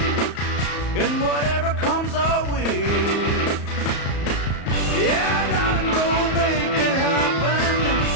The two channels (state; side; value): late; right; 34 ms